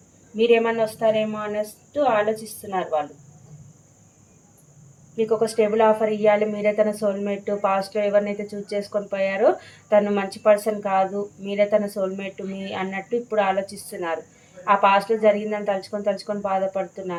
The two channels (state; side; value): identical; both; correlation 1.00